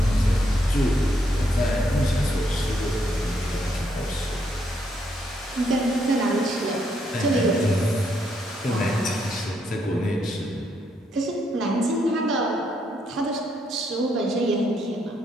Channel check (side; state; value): both; normal; correlation 0.75